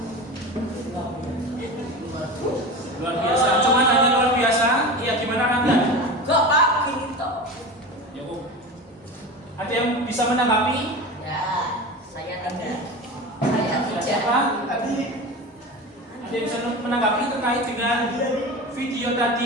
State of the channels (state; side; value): normal; both; correlation 0.29